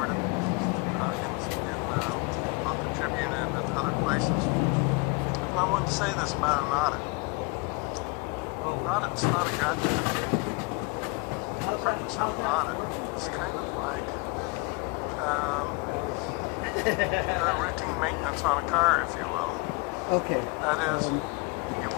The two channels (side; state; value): right; quieter; 28.1 dB